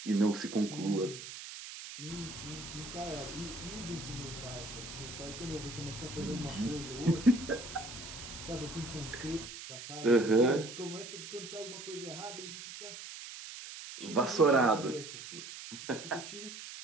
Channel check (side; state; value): right; noise; hiss, 11 dB below the sound